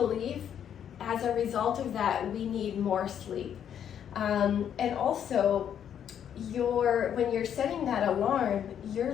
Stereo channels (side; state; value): right; quieter; 9.1 dB